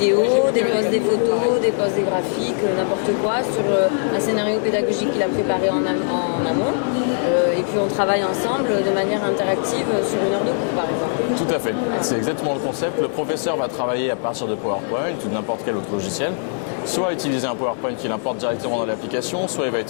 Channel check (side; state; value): right; silent; 65 dB below the other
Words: dépose des photos, dépose des graphiques, n'importe quoi, sur un scénario pédagogique qu'il a préparé en amont. Et puis on travaille ensemble de manière interactive sur une heure de cours, par exemple. Tout à fait, c'est exactement le concept. Le professeur va travailler à partir de PowerPoint ou de n'importe quel autre logiciel, soit utiliser un PowerPoint qu'il importe directement dans l'application, soit il va